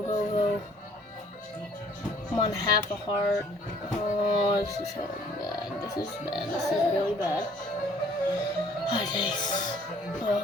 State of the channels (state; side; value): normal; both; correlation 0.58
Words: I'm on half a heart. Oh, this is so bad. This is really bad. Oh, jeez.